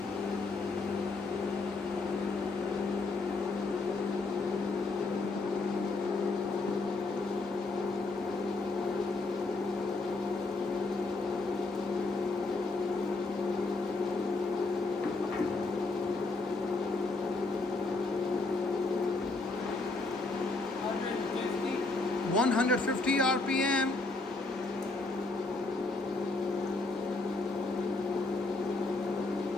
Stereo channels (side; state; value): right; quieter; 3.4 dB